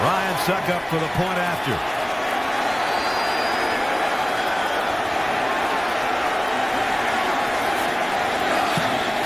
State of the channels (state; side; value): noise; left; rumble, 27 dB below the sound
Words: Succop for the point after.